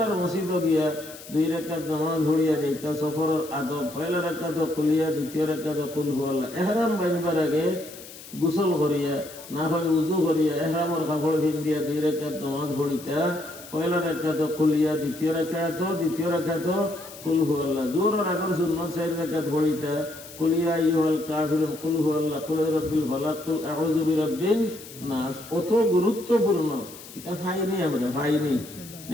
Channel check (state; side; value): noise; left; hiss, 16 dB below the sound